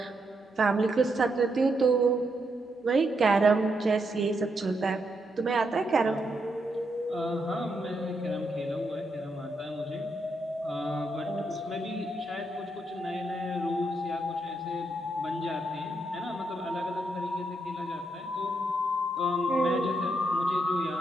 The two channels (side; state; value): both; normal; correlation 0.80